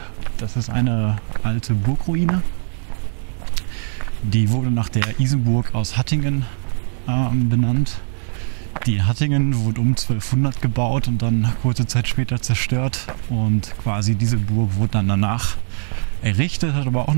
Das ist eine alte Burgruine. Die wurde nach der Isenburg aus Hattingen benannt. Die in Hattingen wurde um 1200 gebaut und dann kurze Zeit später zerstört. Und quasi diese Burg wurde dann danach errichtet, hat aber auch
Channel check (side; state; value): left; silent; 63 dB below the other